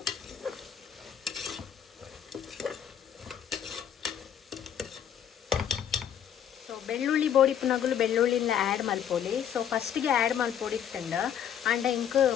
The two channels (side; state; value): right; quieter; 9.1 dB